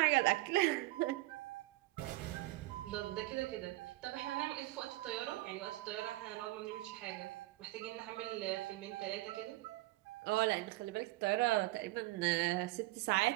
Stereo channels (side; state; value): left; quieter; 19.2 dB